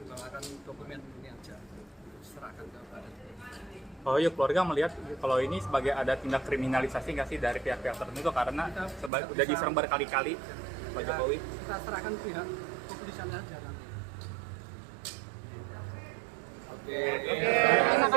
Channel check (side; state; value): left; drops out; at 9.1 s